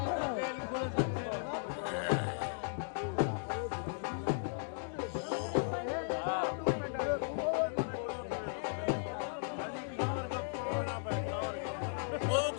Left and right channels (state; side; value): silent; right; digital silence